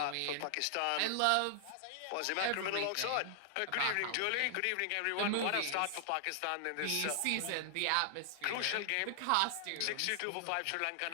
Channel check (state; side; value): different; both; correlation 0.00